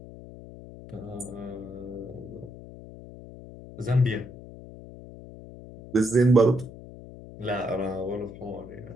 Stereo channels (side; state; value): left; noise; hum, 15 dB below the sound